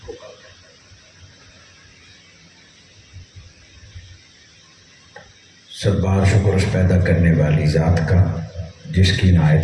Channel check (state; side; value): identical; both; correlation 1.00